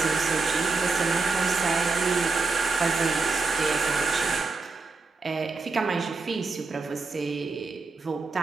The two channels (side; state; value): left; quieter; 4.1 dB